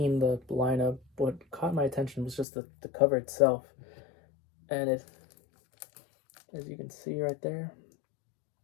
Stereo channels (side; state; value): right; drops out; at 2.5 s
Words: the lineup, what caught my attention was just the cover itself. And it, as you can see right there,